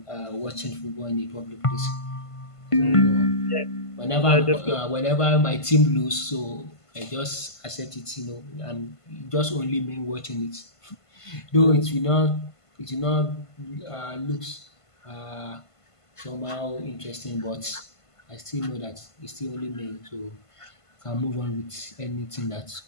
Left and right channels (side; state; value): right; late; 1.5 ms